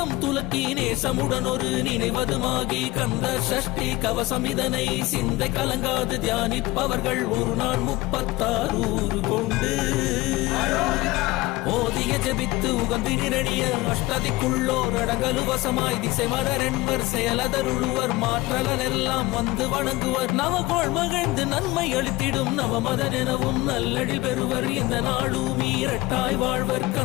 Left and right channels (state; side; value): quieter; right; 19.9 dB